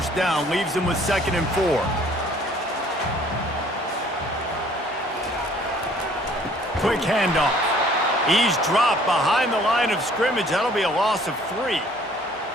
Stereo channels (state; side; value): normal; both; correlation 0.57